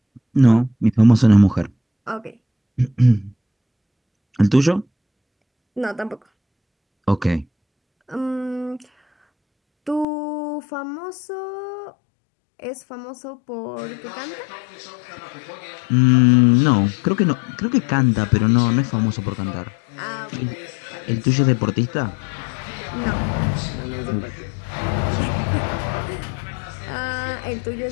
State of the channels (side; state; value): right; drops out; at 10.1 s